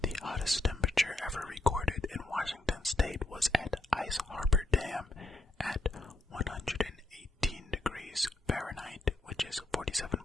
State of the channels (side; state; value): both; normal; correlation 0.79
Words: The hottest temperature ever recorded in Washington State was at Ice Harbor Dam at 118 degrees Fahrenheit, which is